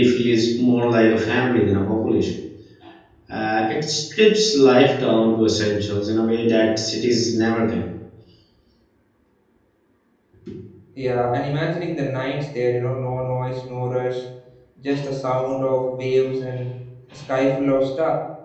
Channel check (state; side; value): identical; both; correlation 1.00